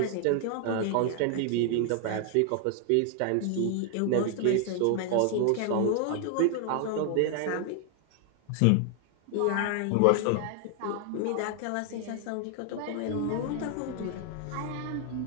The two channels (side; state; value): both; different; correlation 0.00